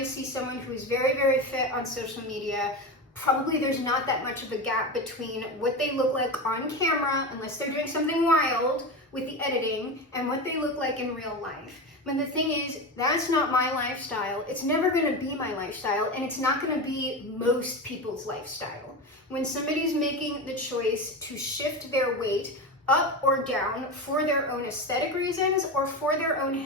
see someone who's very, very fit on social media, probably there's not that much of a gap between what they look like on camera, unless they're doing something wild with the editing, and what they look like in real life. But the thing is, that's not my lifestyle. It's never gonna be my lifestyle, and it's not gonna be most people's lifestyle. When somebody's making the choice to shift their weight up or down for their own aesthetic reasons or for their own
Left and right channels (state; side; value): normal; both; correlation 0.22